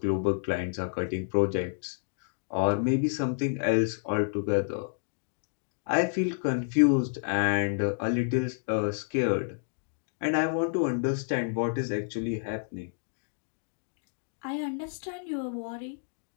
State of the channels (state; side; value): silent; right; digital silence